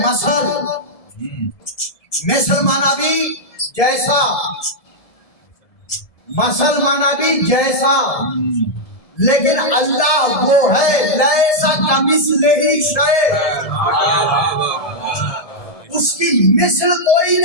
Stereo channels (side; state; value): right; late; 1.7 ms